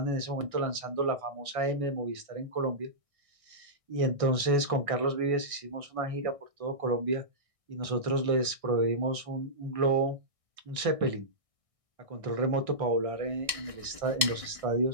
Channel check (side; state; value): left; late; 1.6 ms